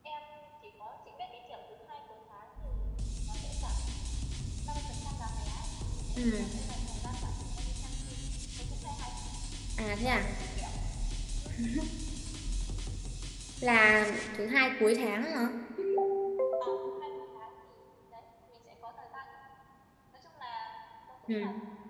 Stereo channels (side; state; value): both; identical; correlation 1.00